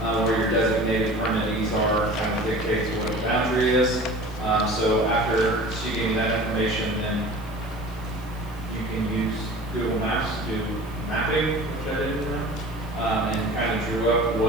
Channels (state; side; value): noise; left; hiss, 24 dB below the sound